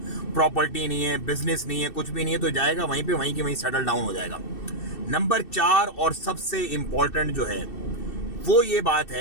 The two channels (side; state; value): right; late; 2.6 ms